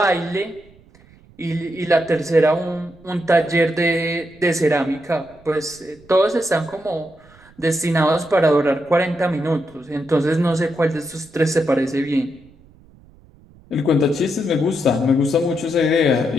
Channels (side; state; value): right; noise; rumble, 27 dB below the sound